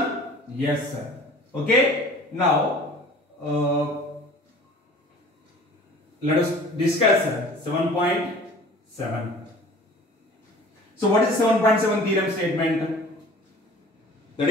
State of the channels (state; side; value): normal; both; correlation 0.46